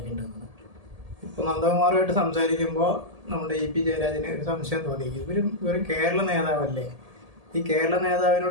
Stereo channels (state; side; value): late; left; 1.7 ms